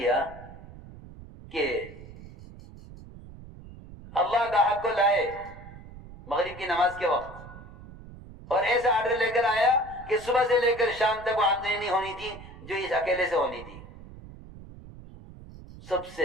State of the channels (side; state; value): right; noise; rumble, 17 dB below the sound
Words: کہ اللہ گاہک کو لائے مغرب کی نماز کے وقت اور ایسا آرڈر لے کر آیا کہ صبح سے لے کر شام تک وہ آمدنی نہیں ہونی تھی جو اس اکیلے سے ہونی تھی، سب سے